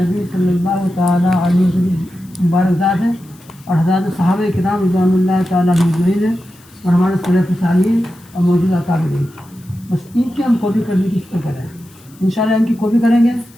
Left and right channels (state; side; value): noise; left; hiss, 27 dB below the sound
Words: صلی اللہ تعالیٰ علیہ وسلم مبارک ذات ہے, اور حضرات صحابہ کرام رضوان اللہ تعالیٰ مجمعین ہے, اور ہمارے سلف صالحین اور موجودہ اکابرین. بس ان کی ہم کاپی کرنے کی فکر کریں. انشاءاللہ ان کی کاپی کریں گے